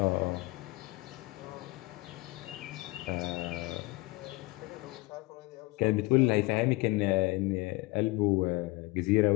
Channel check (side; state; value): right; quieter; 22.5 dB